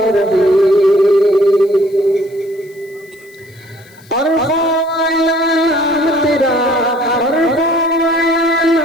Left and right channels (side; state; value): left; noise; hiss, 28 dB below the sound